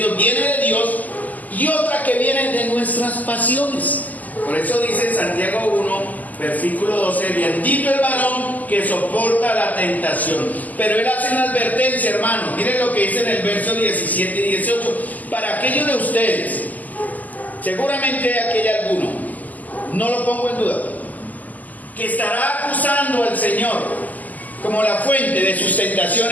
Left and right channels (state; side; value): late; right; 0.080 ms